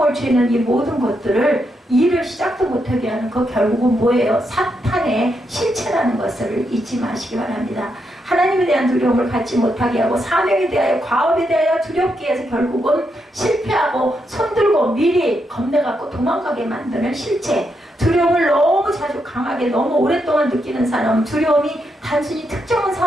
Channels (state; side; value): normal; both; correlation 0.81